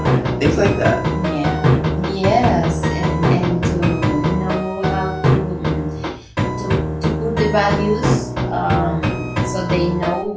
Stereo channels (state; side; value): identical; both; correlation 1.00